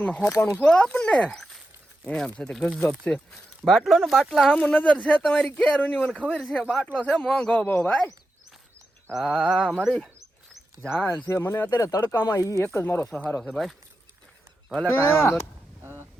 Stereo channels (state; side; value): normal; both; correlation 0.89